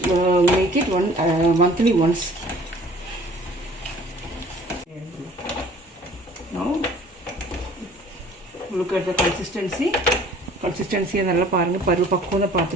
make it monthly once. Now look at the consistency நல்லா பாருங்கள். பக்குவம் தான்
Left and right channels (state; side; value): normal; both; correlation 0.51